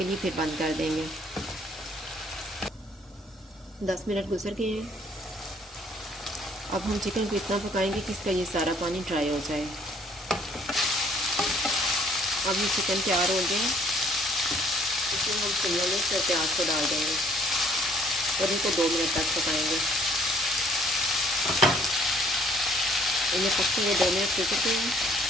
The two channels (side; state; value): both; normal; correlation 0.61